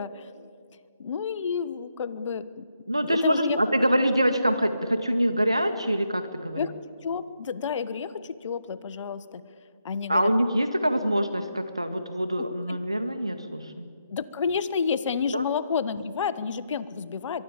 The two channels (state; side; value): inverted; both; correlation -0.81